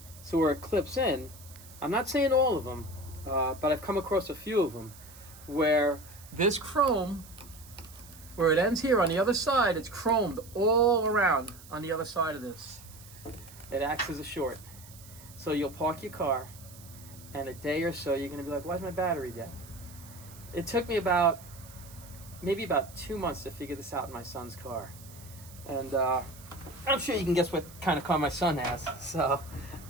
So where it clips in, I'm not saying all of them, but I've come across a few of them where this chrome, where it ends here on the other side, it's chromed all around on the other side of this. It acts as a short. So you'll park your car, and a day or so you're going to be like, why's my battery dead? It took me maybe about 2 months to figure this out in my son's car. And I'm sure you can guess what kind of car my son has. So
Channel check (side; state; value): right; noise; hiss, 20 dB below the sound